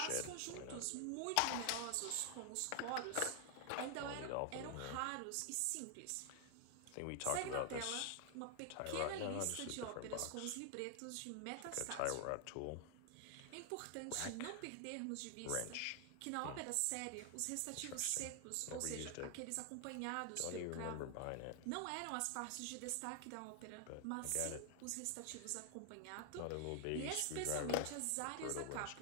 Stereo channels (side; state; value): both; different; correlation 0.00